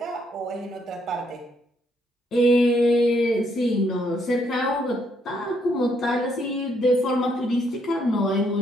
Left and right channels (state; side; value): normal; both; correlation 0.72